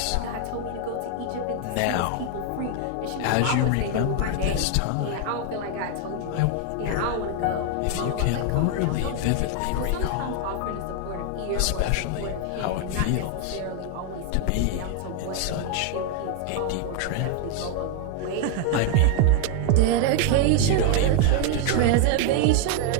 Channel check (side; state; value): both; different; correlation 0.00